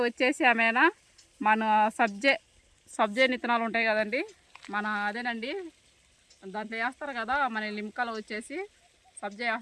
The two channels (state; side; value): identical; both; correlation 1.00